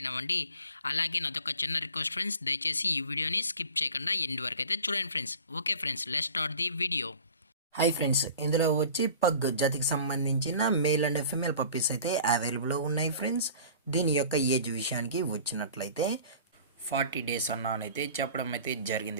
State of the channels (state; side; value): inverted; both; correlation -0.43